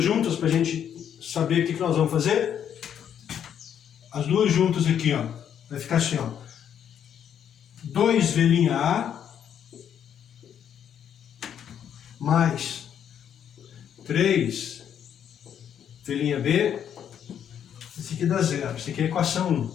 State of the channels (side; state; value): right; quieter; 9.0 dB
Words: juntas para a gente saber o que nós vamos fazer? As duas juntas aqui, ó. Vai ficar assim, ó. 2V' A mais 3V' B. Esse aqui dá zero. Esse aqui é a equação